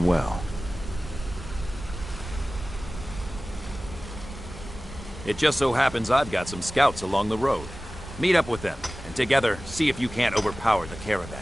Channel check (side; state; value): both; normal; correlation 0.97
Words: well. It just so happens I've got some scouts along the road. Meet up with them, and together, see if you can't overpower the caravan.